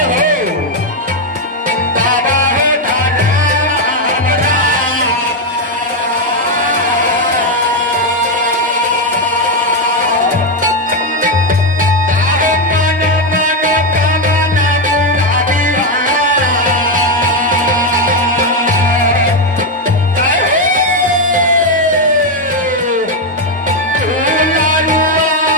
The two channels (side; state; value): both; normal; correlation 0.06